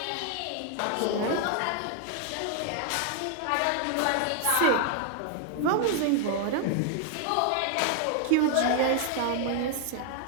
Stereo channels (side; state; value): both; different; correlation 0.00